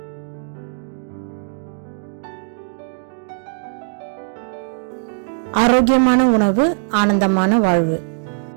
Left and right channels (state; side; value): silent; left; digital silence